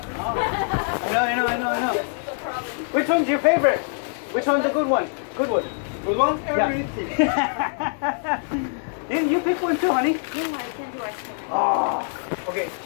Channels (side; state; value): right; silent; digital silence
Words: I know. Which one's your favorite? Which one's the good one? Good one. Good one? Everything. Yeah. you pick one too, honey. No, I can't do it. Oh. Okay.